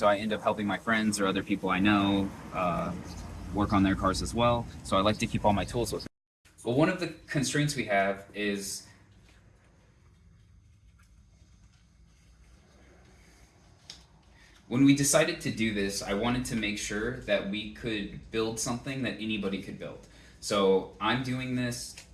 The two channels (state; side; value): identical; both; correlation 1.00